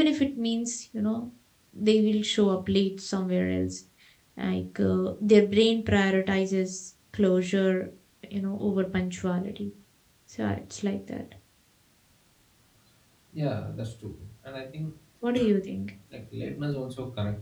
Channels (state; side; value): identical; both; correlation 1.00